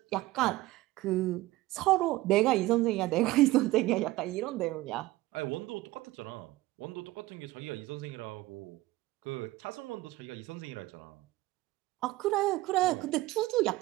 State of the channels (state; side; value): quieter; left; 18.2 dB